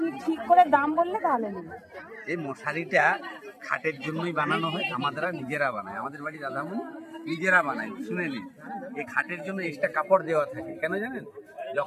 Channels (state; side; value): identical; both; correlation 1.00